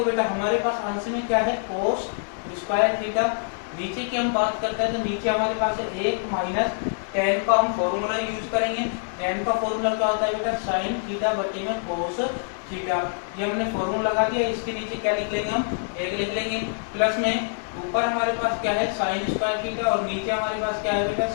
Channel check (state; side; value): silent; right; digital silence